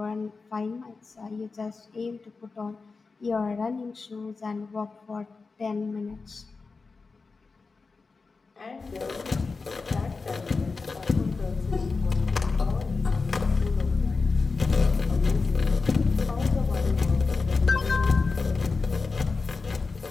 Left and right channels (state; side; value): quieter; right; 4.2 dB